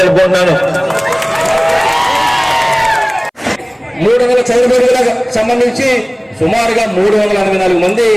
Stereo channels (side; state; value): both; identical; correlation 1.00